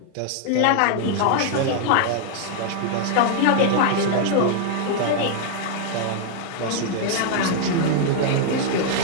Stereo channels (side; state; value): both; different; correlation 0.00